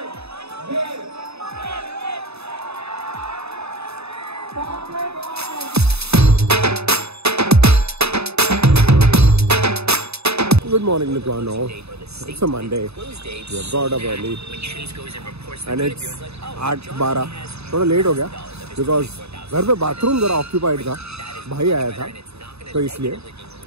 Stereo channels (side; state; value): left; late; 0.79 ms